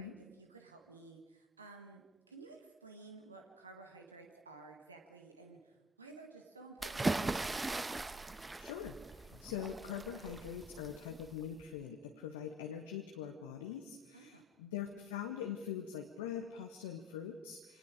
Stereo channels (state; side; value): normal; both; correlation 0.51